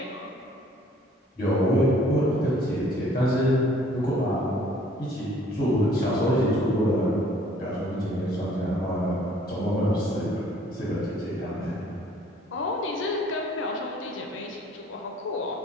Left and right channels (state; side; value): normal; both; correlation 0.57